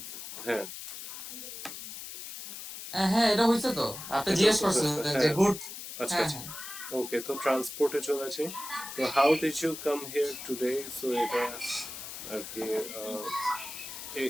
হ্যাঁ, হ্যাঁ এটা হয়েছে তো আপনি এটা জিজ্ঞেস তো হয়েছে, করছিলেন যে হ্যাঁ। গুড আচ্ছা হ্যাঁ আচ্ছা, হ্যাঁ ওকে, তো ট্রান্সপোর্টে চলে আসি। তো how did you come here today? So এটা আর কি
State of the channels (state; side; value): noise; left; hiss, 10 dB below the sound